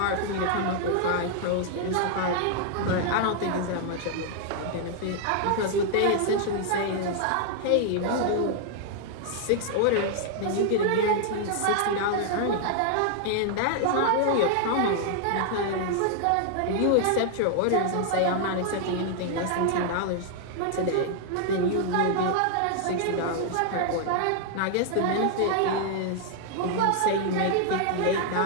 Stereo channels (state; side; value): different; both; correlation 0.00